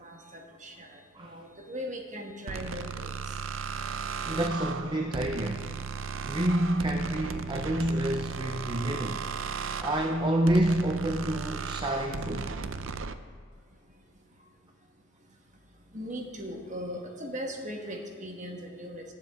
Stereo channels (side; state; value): both; normal; correlation 0.69